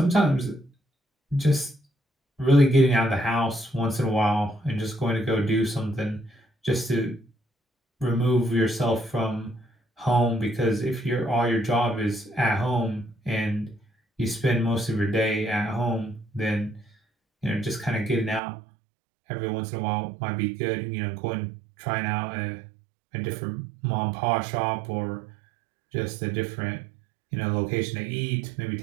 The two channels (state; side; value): drops out; left; at 18.4 s